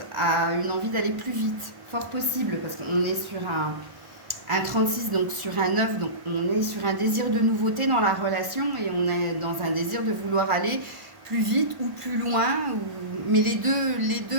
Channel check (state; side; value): late; left; 1.1 ms